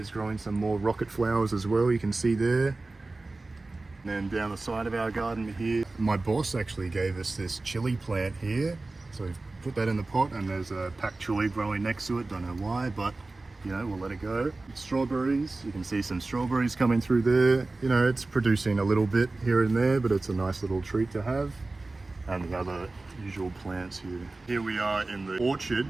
growing some more rocket flowers as well, you can see there. And then down the side of our garden here, my boss actually gave us this chili plant here. So we've put that in the pot, and there's a pak choi growing next to it. Don't know why, but you know, we'll let it go. Strawberries, you can see some strawberries coming through there. You know, it's producing a little bit here and there, but it's a nice little treat to have. And the other usual plants here. Here we are in the orchard,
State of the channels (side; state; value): left; quieter; 3.2 dB